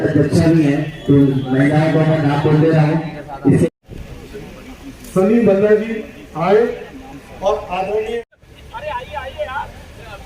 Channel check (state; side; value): identical; both; correlation 1.00